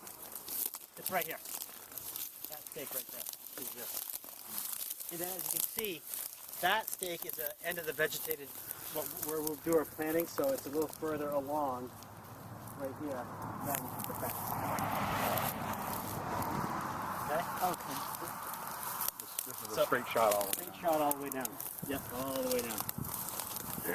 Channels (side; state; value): both; identical; correlation 1.00